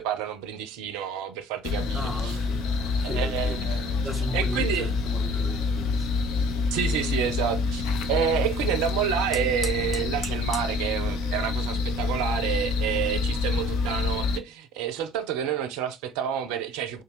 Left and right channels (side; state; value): both; normal; correlation 0.49